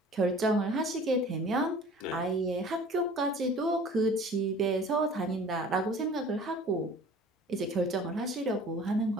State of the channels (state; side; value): normal; both; correlation 0.46